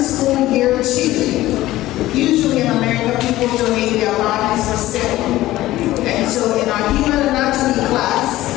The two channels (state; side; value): quieter; right; 16.0 dB